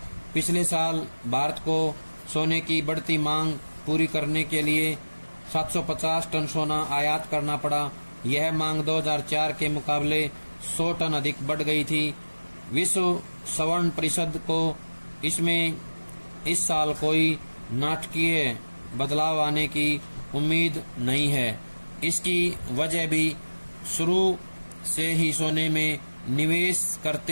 पिछले साल भारत को सोने की बढ़ती मांग पूरी करने के लिए 750 टन सोना आयात करना पड़ा। यह मांग 2004 के मुकाबले 100 टन अधिक बढ़ गई थी। विश्व स्वर्ण परिषद को इसमें इस साल कोई नाटकीय बदलाव आने की उम्मीद नहीं है। इसकी वजह भी शुरू से ही सोने में निवेश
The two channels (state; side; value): inverted; both; correlation -1.00